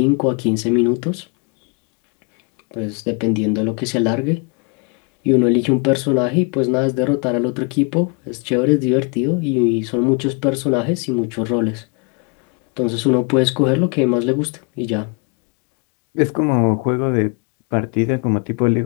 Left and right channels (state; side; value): quieter; right; 34.2 dB